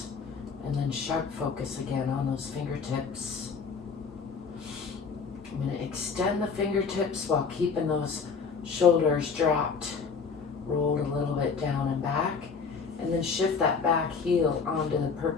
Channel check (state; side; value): quieter; right; 5.4 dB